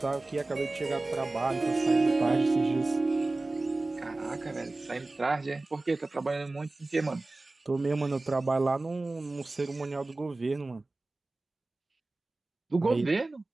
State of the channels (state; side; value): quieter; left; 3.1 dB